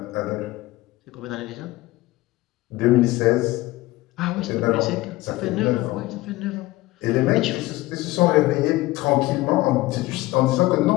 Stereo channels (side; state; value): right; quieter; 18.8 dB